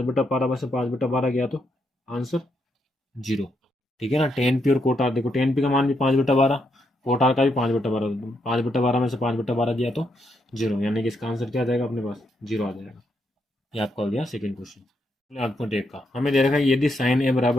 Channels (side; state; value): both; normal; correlation 0.79